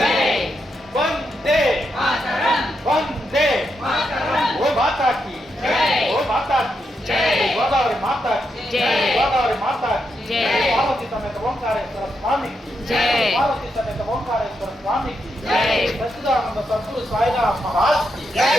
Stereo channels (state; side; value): normal; both; correlation 0.83